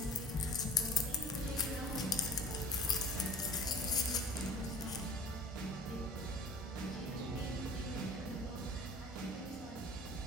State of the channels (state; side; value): normal; both; correlation 0.45